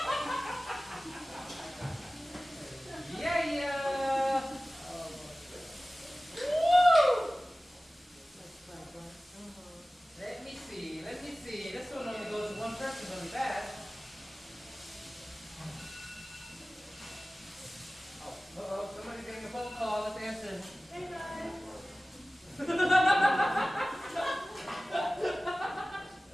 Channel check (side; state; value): both; normal; correlation 0.97